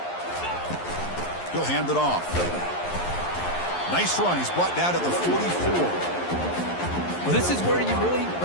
He'll hand it off. Nice run. He's brought down to the 44. Well, this is where you really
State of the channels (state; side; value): late; right; 11 ms